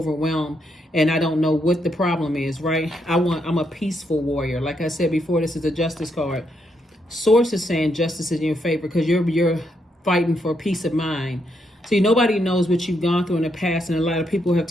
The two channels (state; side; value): normal; both; correlation 0.78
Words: and I don't know what the problem is, right? I'm a peaceful warrior. Like I said before, this is a Justice card. Source is saying justice is in your favor, because you're fighting for peace of mind. See, nobody knows what you've gone through in the past, and a lot of people have